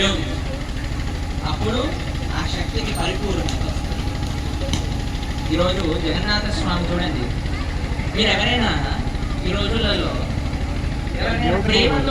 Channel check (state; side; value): identical; both; correlation 1.00